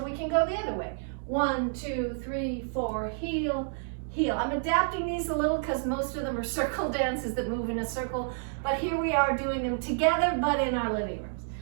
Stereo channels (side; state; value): left; silent; digital silence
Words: we can go the other way. 1, 2, 3, 4, heel, heel. I'm adapting these a little because most of them are circle dances that move in a circle, but here we are doing them together, but in our living rooms.